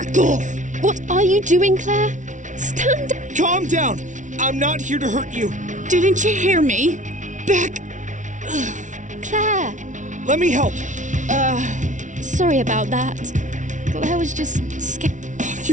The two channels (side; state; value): left; late; 0.37 ms